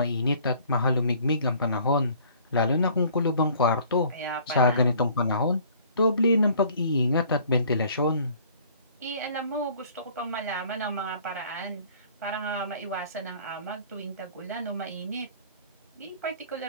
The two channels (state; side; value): inverted; both; correlation -0.54